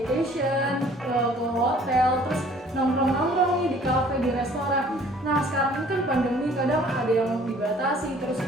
ke hotel, terus nongkrong-nongkrong nih di kafe, di restoran. Nah, sekarang ini kan pandemi, kadang ada yang dibatasi, terus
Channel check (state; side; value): normal; both; correlation 0.54